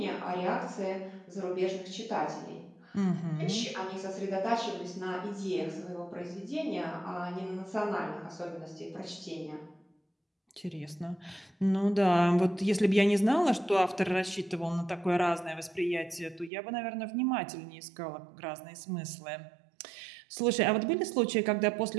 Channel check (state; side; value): drops out; left; at 16.5 s